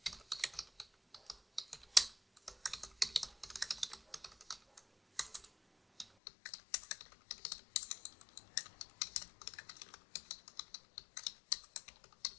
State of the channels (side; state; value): right; drops out; at 6.1 s